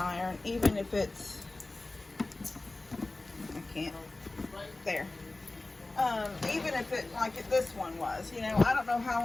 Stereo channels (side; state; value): right; quieter; 3.0 dB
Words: even if it's, I can't, there. Even if it, like this one was, you know, I don't know how